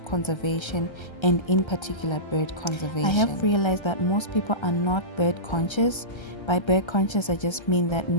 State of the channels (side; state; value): right; late; 1.3 ms